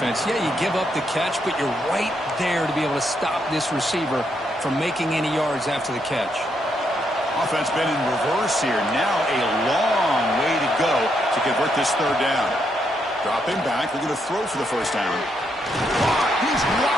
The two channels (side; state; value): both; normal; correlation 0.78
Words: Yeah, you give up the catch, but you're right there to be able to stop this receiver from making any yards after the catch. Offense been in reverse here. Now a long way to go to convert this third down. Dropping back. We're going to throw for the first down. He's